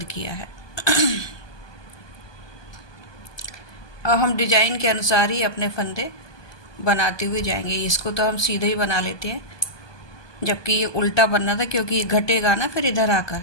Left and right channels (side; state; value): right; late; 1.2 ms